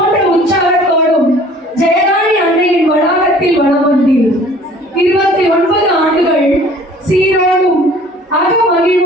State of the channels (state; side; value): normal; both; correlation 0.51